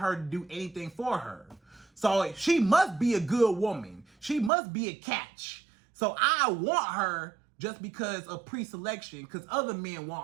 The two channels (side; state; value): left; drops out; at 4.5 s